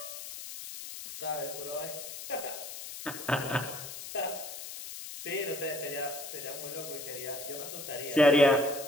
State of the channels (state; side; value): noise; left; hiss, 9 dB below the sound